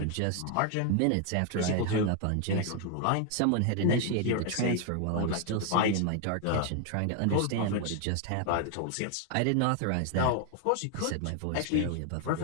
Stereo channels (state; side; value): different; both; correlation 0.00